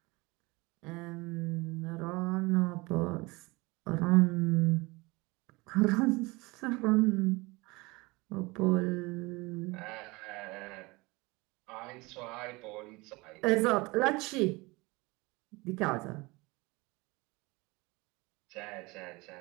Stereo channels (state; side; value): quieter; left; 24.1 dB